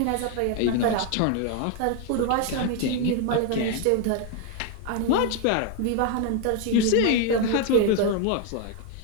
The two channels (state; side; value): different; both; correlation 0.01